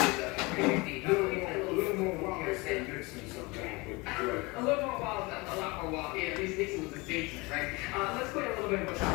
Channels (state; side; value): quieter; right; 25.0 dB